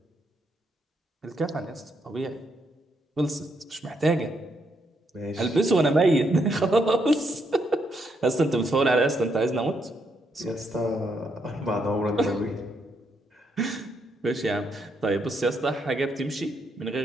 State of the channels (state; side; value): normal; both; correlation 0.77